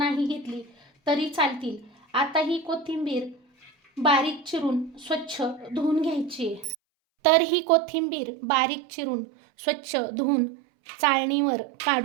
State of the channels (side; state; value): left; drops out; at 6.8 s